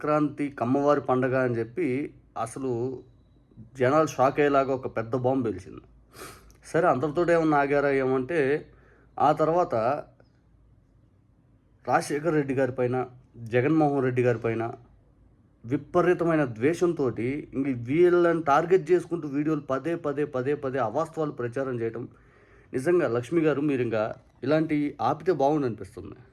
కమ్మవారి పండగ అని చెప్పి అసలు జనాలు షాక్ అయ్యేలాగా ఒక పెద్ద బాంబు పేల్చింది. సరే, అంతటితో ఏమన్నా ఆగారా ఏమంటే ఆ తర్వాత రాజశేఖర్ రెడ్డి గారి పైన, జగన్మోహన్ రెడ్డి గారి పైన విపరీతమైన ద్వేషంతో ఇంక వీళ్ళని టార్గెట్ చేసుకుంటూ వీడియోలు పదే అవాస్తవాలు ప్రచారం చేయడం. నిజంగా లక్ష్మి గారు, మీరు ఇంకా ఇలాంటి ఆపితే బాగుండు అనిపిస్తుంది.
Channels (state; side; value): identical; both; correlation 1.00